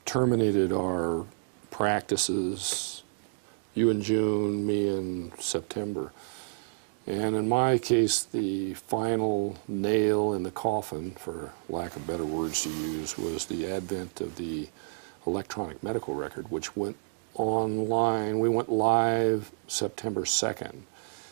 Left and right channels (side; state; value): left; silent; digital silence